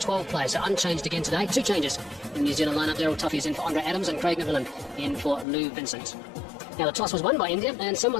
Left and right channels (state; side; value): drops out; right; at 5.5 s